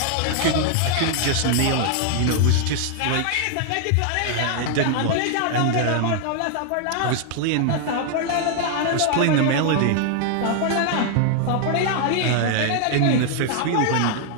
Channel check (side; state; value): both; different; correlation 0.00